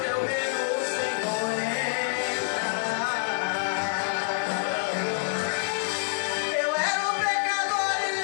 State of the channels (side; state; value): right; silent; digital silence